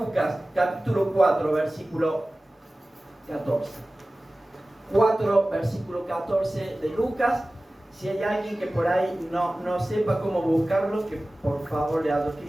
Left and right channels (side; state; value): both; normal; correlation 0.97